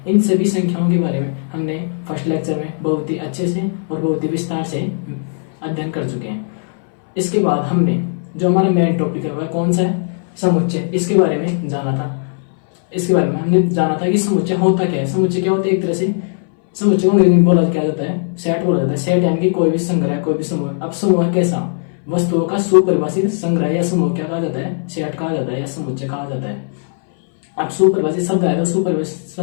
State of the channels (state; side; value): silent; right; 63 dB below the other